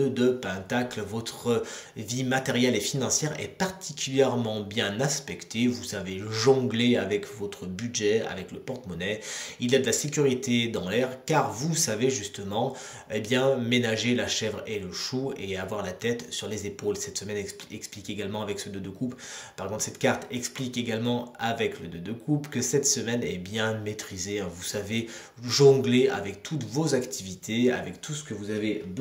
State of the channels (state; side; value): identical; both; correlation 1.00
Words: de Pentacle. Votre vie matérielle et financière est particulièrement bien aspectée. Vous savez jongler avec votre budget, avec le porte-monnaie. Il y a de la sécurité dans l'air car vous savez justement ménager la chèvre et le chou et avoir la tête sur les épaules. Cette semaine explique également avec ce 2 de coupe. Par contre, cette carte explique également avec le 2 de coupe que cette semaine est bien maîtrisée. Vous savez jongler avec toutes vos activités, avec tout ce que vous avez